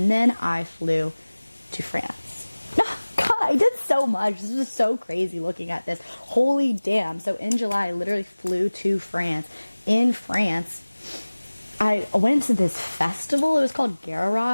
then I flew to France. God, I did so much. This was so crazy looking at this. Holy damn. So in July, I literally flew to France. In France, I went to this festival. It was called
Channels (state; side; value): inverted; both; correlation -1.00